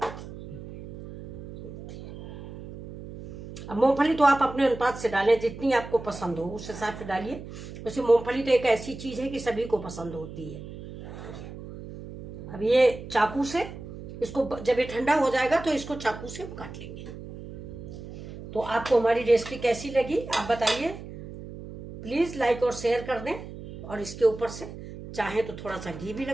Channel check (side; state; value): right; noise; hum, 12 dB below the sound